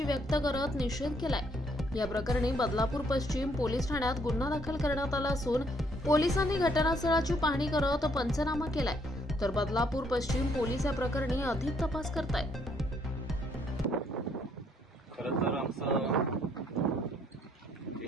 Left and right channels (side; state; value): both; normal; correlation 0.68